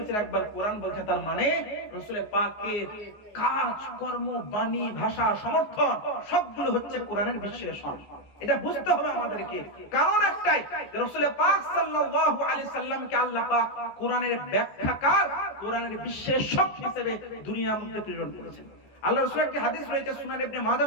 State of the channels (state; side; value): late; right; 14 ms